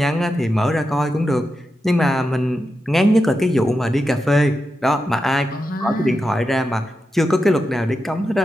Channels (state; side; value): normal; both; correlation 0.89